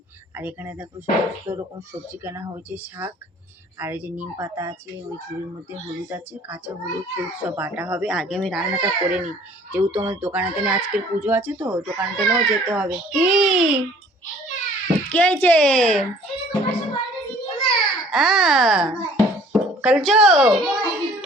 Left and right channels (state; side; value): normal; both; correlation 0.54